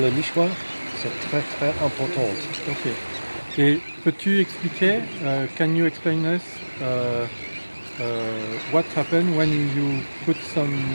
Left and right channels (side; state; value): both; inverted; correlation -1.00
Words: nichoir, c'est très très important. Ok. Et peux-tu expliquer, can you explain us what happened when you put some